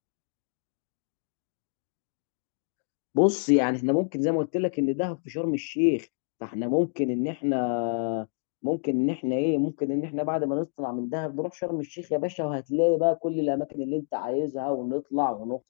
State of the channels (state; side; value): silent; right; 59 dB below the other